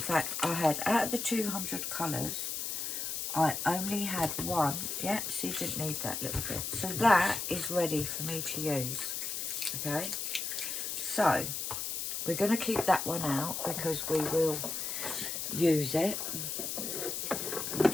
I had, out of the 200 colours, I only had one. Yep, so you didn't need that little bit. So that is ready for me to use. Okay, so we're going to keep that one out because we will use it. I'm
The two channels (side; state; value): left; noise; hiss, 3 dB below the sound